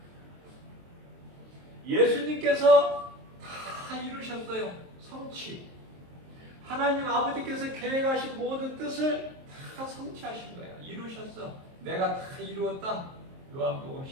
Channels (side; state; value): left; late; 23 ms